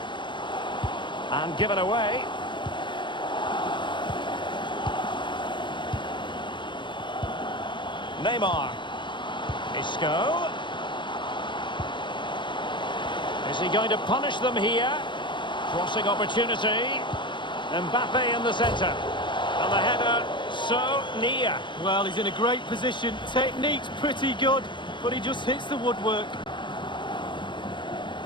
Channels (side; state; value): right; late; 0.23 ms